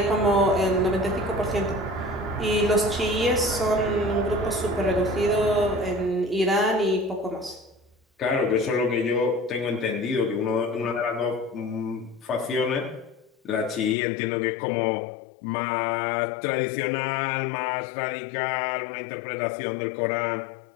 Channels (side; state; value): right; drops out; at 14.0 s